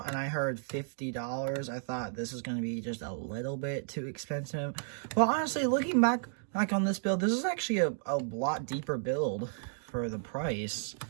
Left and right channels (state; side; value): silent; left; digital silence